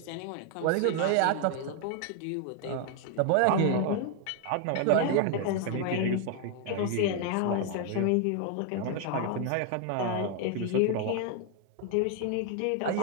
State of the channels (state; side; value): different; both; correlation 0.00